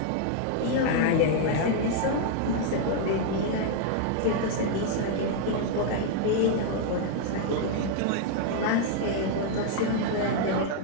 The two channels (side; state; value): both; different; correlation 0.00